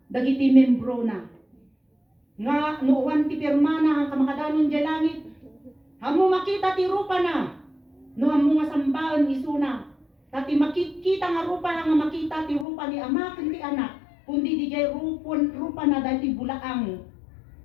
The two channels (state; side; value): drops out; right; at 12.7 s